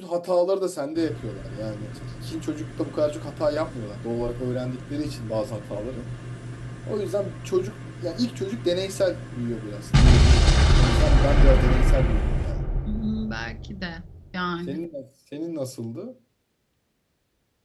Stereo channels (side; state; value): both; identical; correlation 1.00